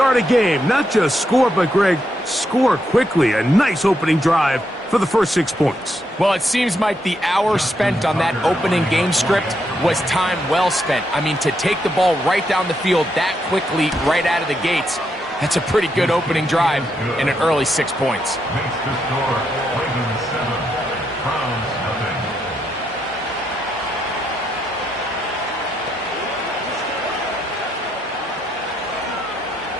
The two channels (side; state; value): both; normal; correlation 0.79